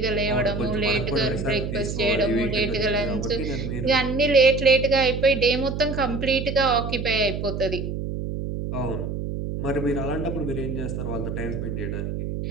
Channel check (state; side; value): noise; right; hum, 4 dB below the sound